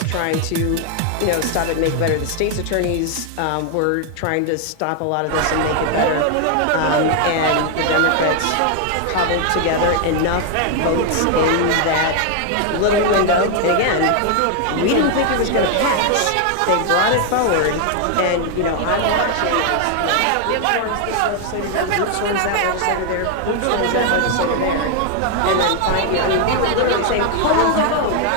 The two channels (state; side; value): different; both; correlation 0.00